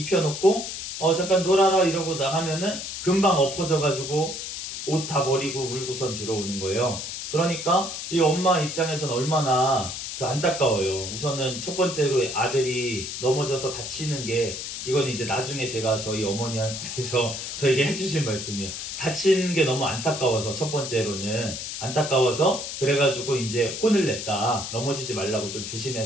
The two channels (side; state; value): left; noise; hiss, 6 dB below the sound